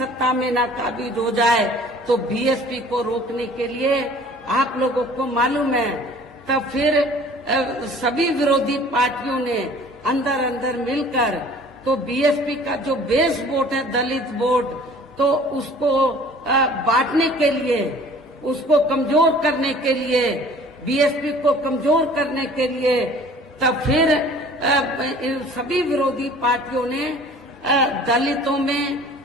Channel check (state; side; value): normal; both; correlation 0.49